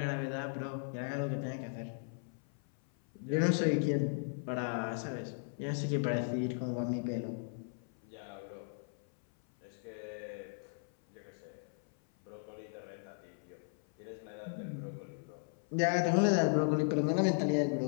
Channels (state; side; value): silent; right; 53 dB below the other